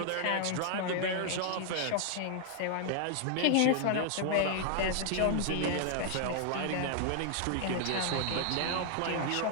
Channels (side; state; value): both; different; correlation 0.00